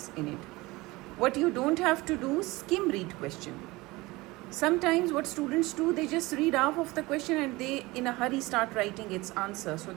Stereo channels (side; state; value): left; quieter; 21.4 dB